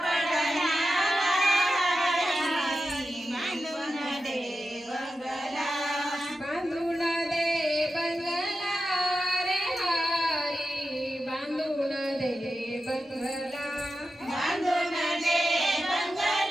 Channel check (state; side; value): normal; both; correlation 0.91